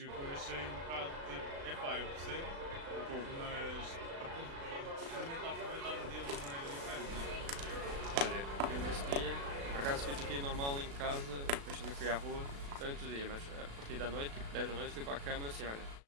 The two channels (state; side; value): late; left; 36 ms